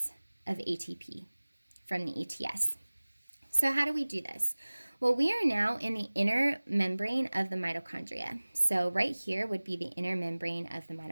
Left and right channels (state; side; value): inverted; both; correlation -1.00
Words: of ATP from the ETS. So how do we do this? Well, we are now in the inner membrane of the mitochondria. So right here would be the inner membrane of the